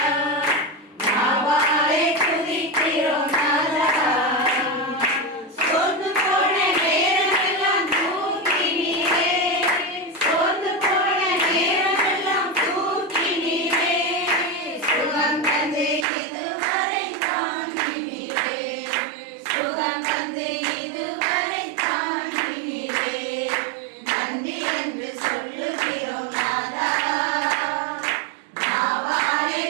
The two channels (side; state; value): left; drops out; at 16.1 s